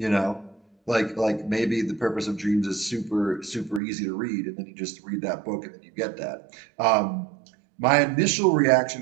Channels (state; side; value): drops out; left; at 3.8 s